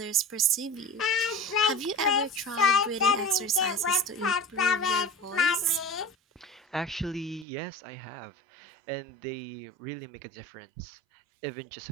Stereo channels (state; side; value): drops out; left; at 7.5 s